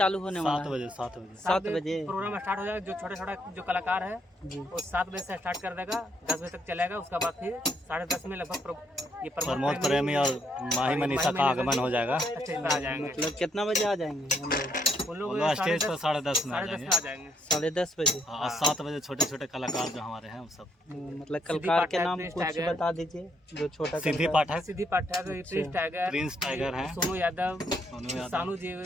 होने वाला है? 7 बजे प्रोग्राम स्टार्ट हो जाएगा। जो छोटा जो कलाकार है वो 7 बजे से स्टार्ट कर देगा, 10 बजे तक चलेगा। उसके बाद फिर 10:30 में लगभग ये प्रमोद प्रेमी और माही मनीषा का आगमन हो जाएगा। स्टेज पर आ जाएंगे। मतलब कितना बजे आ जाएंगे हम लोग? वो लोग स्टेज पर 10:30 में आ 10:30 जाएंगे। 10:30 बजे। और 7 बजे छोटे छोटे कलाकार जो हमारे हैं वो सब। मतलब कलाकार के नाम कुछ बता दीजिए। जो छोटा सिद्धि पाठक, सिद्धि पाठक, प्रिंस टाइगर है, सोनू यादव, सानू जी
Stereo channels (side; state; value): both; normal; correlation 0.72